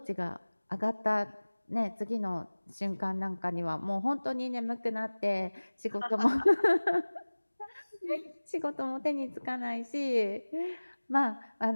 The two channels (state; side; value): inverted; both; correlation -1.00